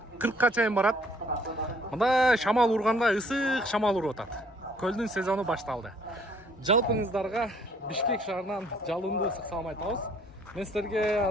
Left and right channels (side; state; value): both; normal; correlation 0.61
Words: чейин барат. Мында шамал урганда ысык шамал уруп атат. Көлдүн сезону башталды. Жалпыңыздарга Бишкек шаарынан жалындуу ысык салам айтабыз. Мен силерге